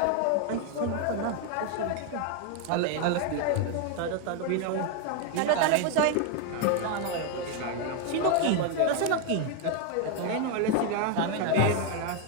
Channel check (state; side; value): different; both; correlation 0.01